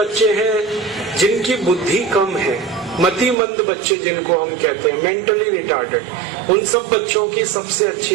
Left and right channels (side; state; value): left; drops out; at 3.4 s